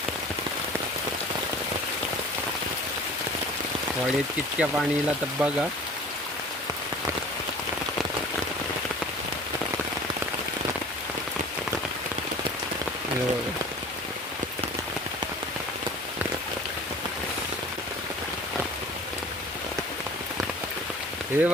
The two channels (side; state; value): both; normal; correlation 0.44